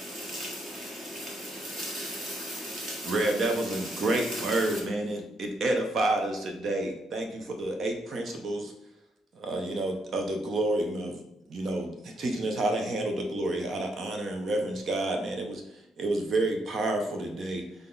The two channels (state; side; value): normal; both; correlation 0.76